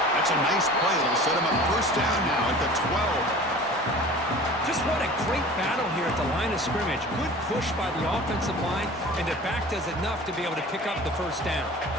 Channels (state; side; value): normal; both; correlation 0.41